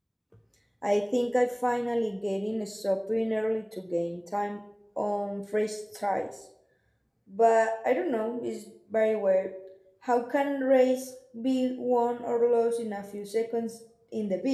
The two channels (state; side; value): identical; both; correlation 1.00